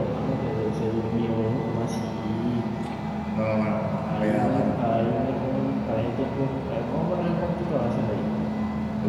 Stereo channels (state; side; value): identical; both; correlation 1.00